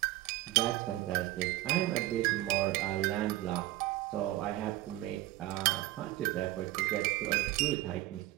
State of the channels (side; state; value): left; quieter; 16.3 dB